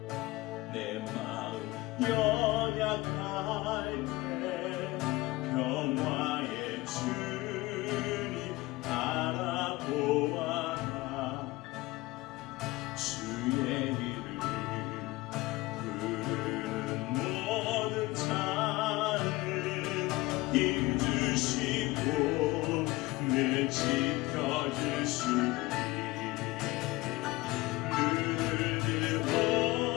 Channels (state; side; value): quieter; right; 20.4 dB